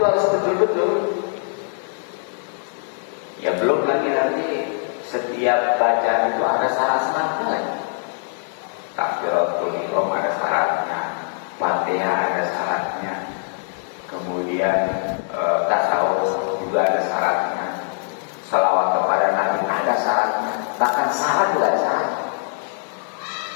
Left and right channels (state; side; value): silent; right; 60 dB below the other